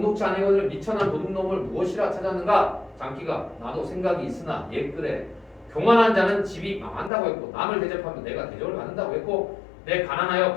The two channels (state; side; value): drops out; right; at 7.1 s